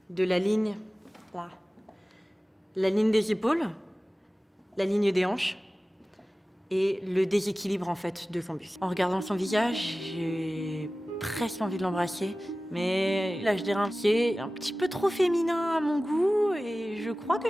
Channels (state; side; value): normal; both; correlation 0.96